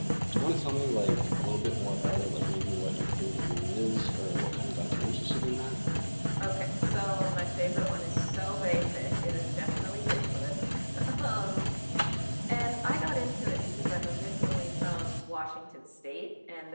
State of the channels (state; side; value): inverted; both; correlation -1.00